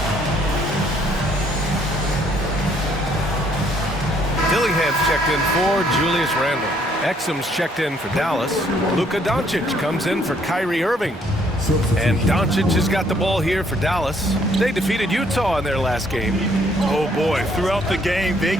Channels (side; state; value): both; normal; correlation 0.66